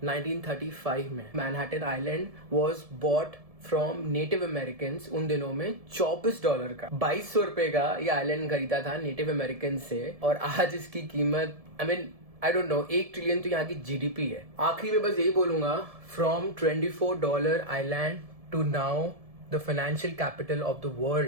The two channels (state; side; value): late; left; 1.7 ms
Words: 1935 में। Manhattan island was bought from native American उन दिनों में $24 का, 2200 रुपए का ये आइलैंड खरीदा था नेटिव अमेरिकन से, और आज इसकी कीमत आई डोंट नो, 1 ट्रिलियन तो यहाँ की GDP है। आखिरी में बस यही बोलूंगा, from $24 island to now the financial capital of the